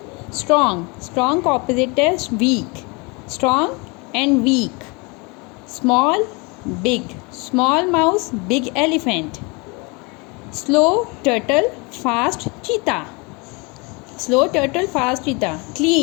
strong. Strong opposite is weak. Strong and weak. Small, big. Small mouse, big elephant. Slow turtle, fast cheetah. Slow turtle, fast cheetah.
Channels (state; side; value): quieter; right; 29.0 dB